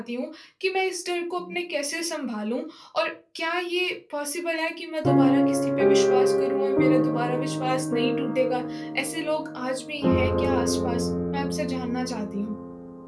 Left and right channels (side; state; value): both; identical; correlation 1.00